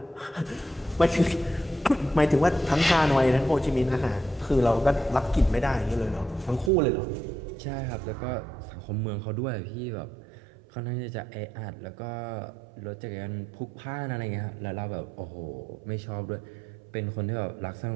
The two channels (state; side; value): drops out; left; at 6.7 s